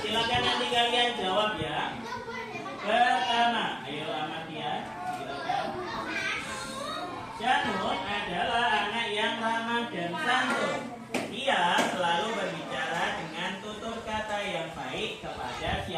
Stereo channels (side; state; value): both; identical; correlation 1.00